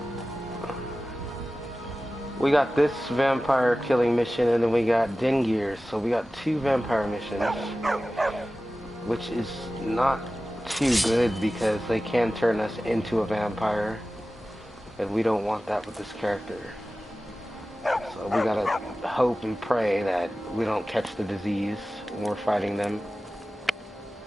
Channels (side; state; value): both; normal; correlation 0.96